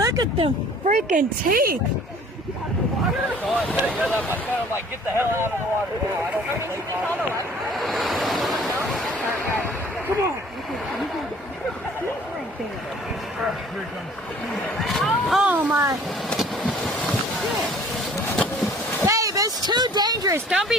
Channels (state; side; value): normal; both; correlation 0.52